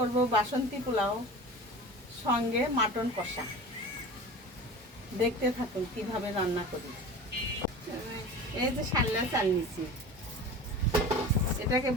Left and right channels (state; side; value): normal; both; correlation 0.35